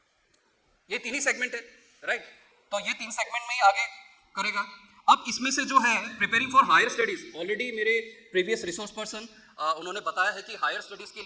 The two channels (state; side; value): identical; both; correlation 1.00